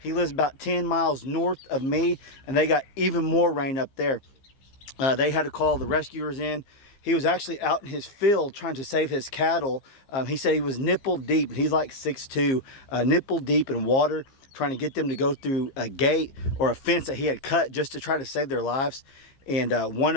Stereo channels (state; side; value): late; right; 15 ms